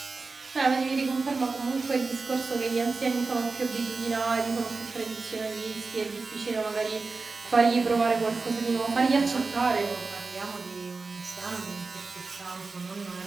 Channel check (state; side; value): quieter; left; 4.0 dB